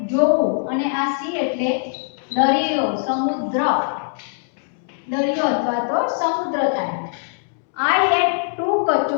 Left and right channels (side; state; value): right; silent; 65 dB below the other